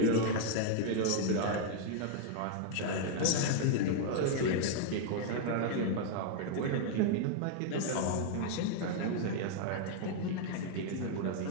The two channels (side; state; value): both; different; correlation 0.00